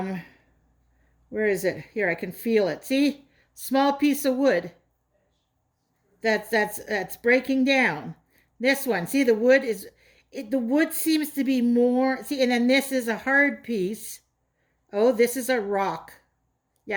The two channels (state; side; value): identical; both; correlation 1.00